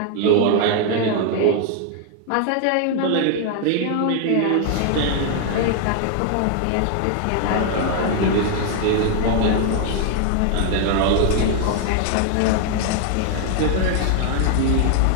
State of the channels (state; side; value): different; both; correlation 0.00